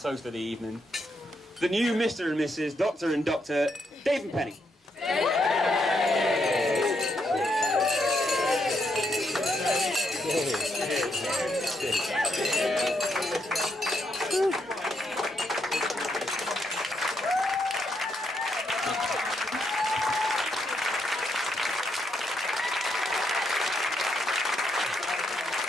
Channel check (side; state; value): both; normal; correlation 0.78